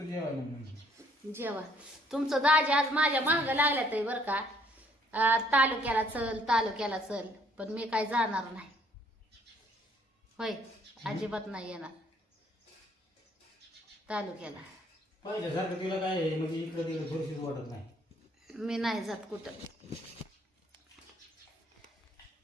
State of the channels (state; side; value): normal; both; correlation 0.64